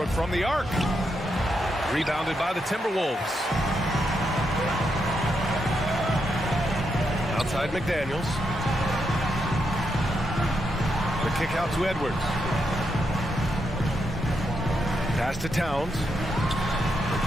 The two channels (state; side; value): normal; both; correlation 0.82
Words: from the arc. Rebounded by the Timberwolves. Outside McDaniels. The kick out to Edwards. Pass to Towns.